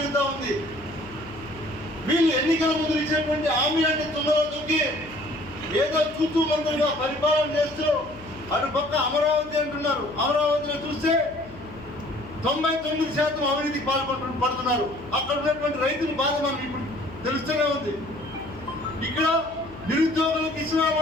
ఉంది. వీళ్ళు ఎన్నికల ముందు ఇచ్చినటువంటి హామీ అంటే తొందరగా దొక్కి ఏదో చూస్తూ మంత్రులుగా పరిపాలన చేస్తూ అటు పక్క అమరావతి అంటున్నారు. అమరావతిలో చూస్తే 99% అవినీతికి పడుతున్నారు. అక్కడ ఉన్నటువంటి రైతుల బాధ మనకి ఇప్పుడు తెలుస్తూనే ఉంది. ఇక్కడ నిరుద్యోగులకు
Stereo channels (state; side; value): noise; left; hum, 18 dB below the sound